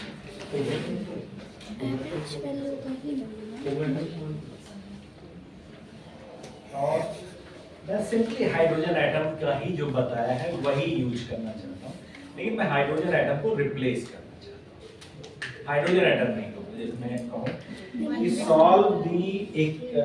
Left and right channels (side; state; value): both; identical; correlation 1.00